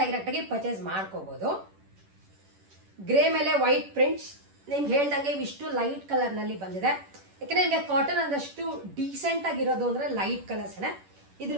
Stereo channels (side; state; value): left; late; 11 ms